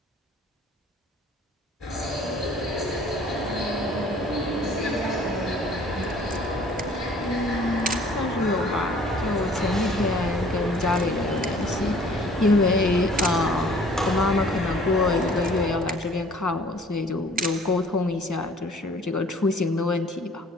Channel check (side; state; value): both; normal; correlation 0.54